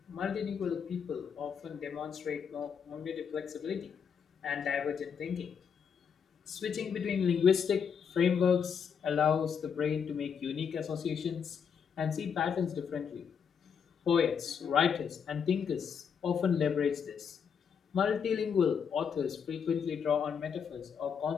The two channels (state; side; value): quieter; right; 7.0 dB